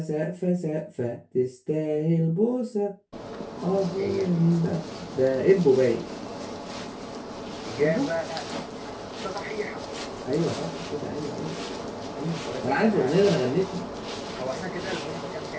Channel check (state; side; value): identical; both; correlation 1.00